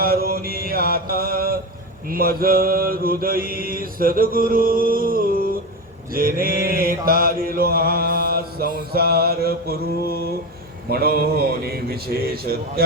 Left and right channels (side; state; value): both; normal; correlation 0.19